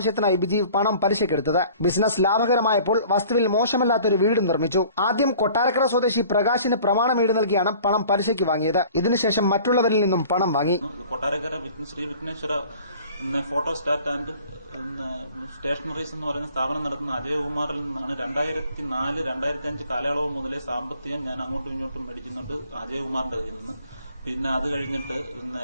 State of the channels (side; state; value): both; inverted; correlation -0.49